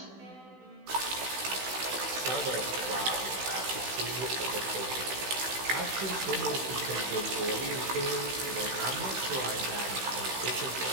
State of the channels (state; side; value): late; left; 16 ms